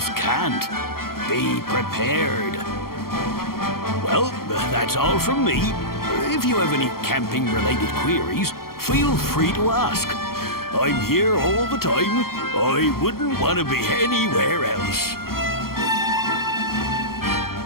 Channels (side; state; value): right; late; 0.93 ms